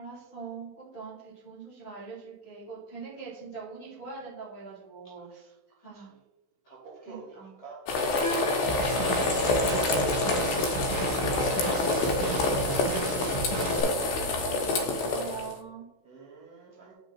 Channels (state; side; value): late; right; 16 ms